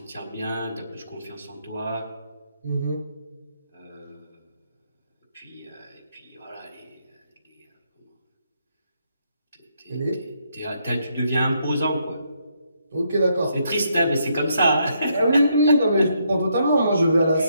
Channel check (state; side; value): inverted; both; correlation -0.75